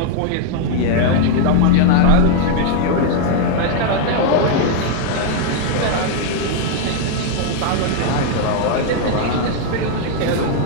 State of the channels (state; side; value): different; both; correlation 0.00